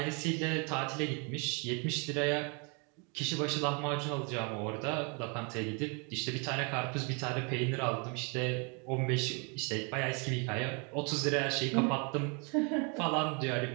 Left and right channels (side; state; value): left; quieter; 33.8 dB